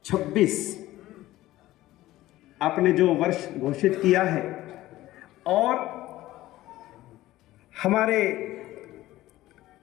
आपने जो वर्ष घोषित किया है, और हमारे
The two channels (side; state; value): right; quieter; 16.1 dB